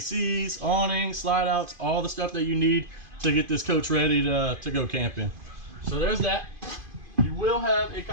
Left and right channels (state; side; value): late; left; 2.5 ms